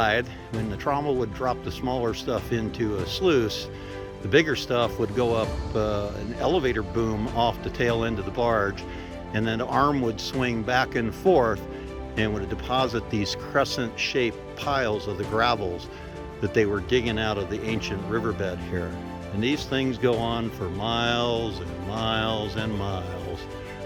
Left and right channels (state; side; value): identical; both; correlation 1.00